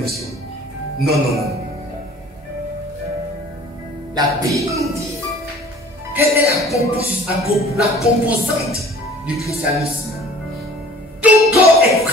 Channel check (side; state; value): both; normal; correlation 0.48